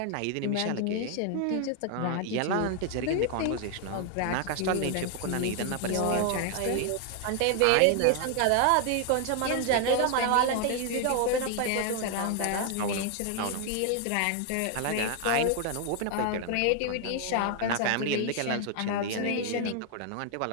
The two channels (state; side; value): different; both; correlation 0.00